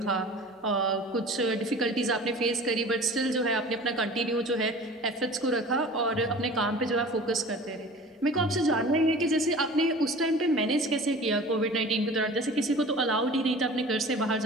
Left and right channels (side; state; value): both; normal; correlation 0.41